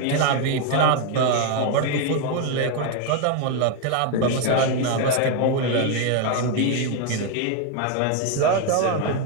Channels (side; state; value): both; different; correlation 0.01